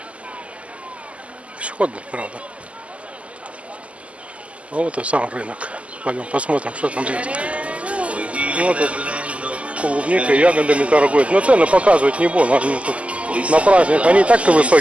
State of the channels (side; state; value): left; late; 0.062 ms